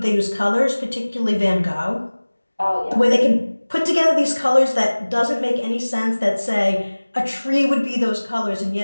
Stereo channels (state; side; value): inverted; both; correlation -1.00